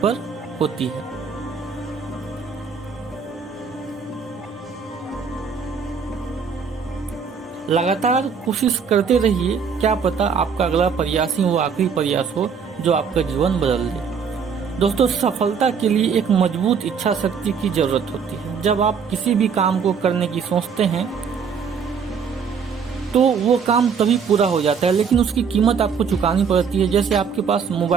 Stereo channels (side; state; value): left; quieter; 6.3 dB